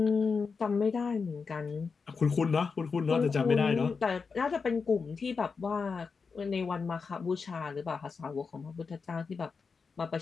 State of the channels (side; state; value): right; quieter; 5.1 dB